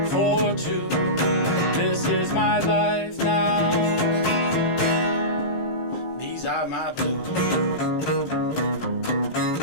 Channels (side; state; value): right; late; 18 ms